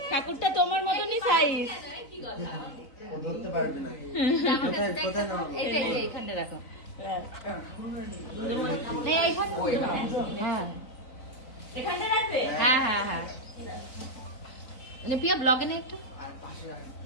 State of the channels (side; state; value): right; late; 4.0 ms